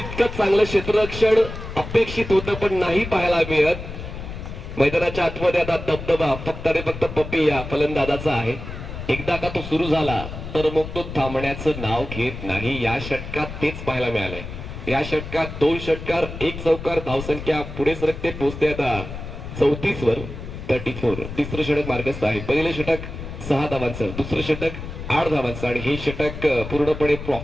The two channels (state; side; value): noise; left; rumble, 9 dB below the sound